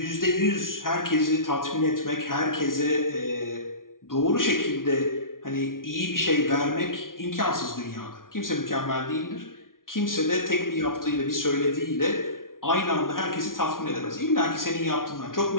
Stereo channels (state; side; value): late; right; 0.90 ms